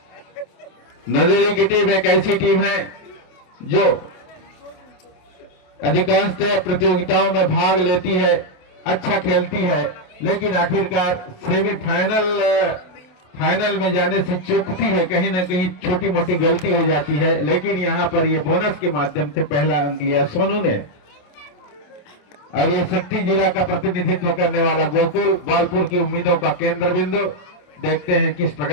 नंदेली की टीम एक ऐसी टीम है जो अधिकांशतः प्रतियोगिताओं में भाग लेती है, अच्छा खेलती है, लेकिन आखिरकार फाइनल में जाने से चूकती है, कहीं ना कहीं छोटी मोटी गलती हो जाती है। लेकिन यहाँ पर ये बोनस के माध्यम से पहला अंक लिया सोनू ने। और ये शक्ति जिला का प्रतिनिधित्व करने वाला गोकुल बालपुर की उम्मीदों का केंद्र बिंदु, देखते हैं किस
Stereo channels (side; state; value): right; late; 28 ms